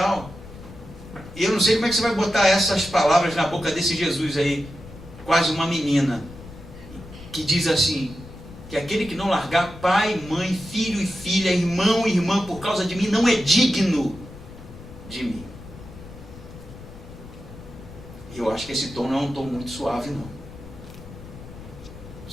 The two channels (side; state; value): left; noise; rumble, 16 dB below the sound